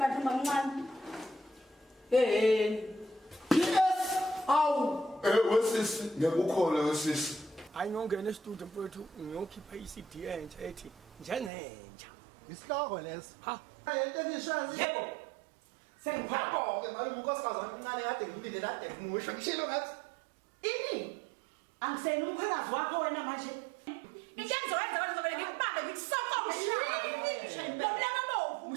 mancane? Yes. Awu. Wesisi ngiyakukhola wesisi. Ayingongena e-studio mfowethu ngiyokhipha i-CD entsha ethi njengentsha. Isihloko leso. Ha. Into engishazi. Yebo. Sengiphako-ke malume unkosikazi omncane kade ngimlinde kade ngimusho ngishilo ngathi. Ini? Angiseni umcimbi wakho wena manje. Into engizowenza wena ngizovele ngikubambe ngikusoko umshaye. Lomlanga bovu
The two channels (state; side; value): drops out; left; at 11.5 s